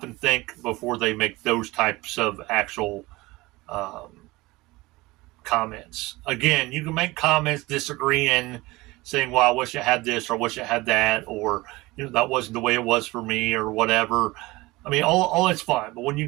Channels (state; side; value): quieter; left; 21.2 dB